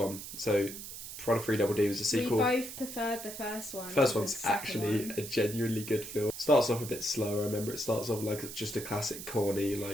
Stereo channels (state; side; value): noise; right; hiss, 10 dB below the sound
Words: So, Piranha 3 Double D was a sequel. We both preferred the first one. First one's actually a genuinely good film. Starts off a bit slower. I remember it starts off like just a classic corny,